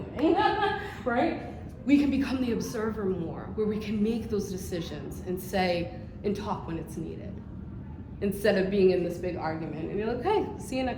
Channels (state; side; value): identical; both; correlation 1.00